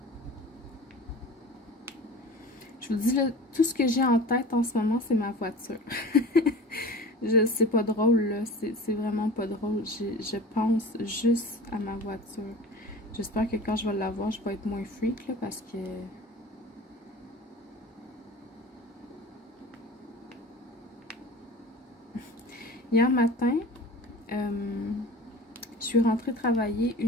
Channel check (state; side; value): normal; both; correlation 0.38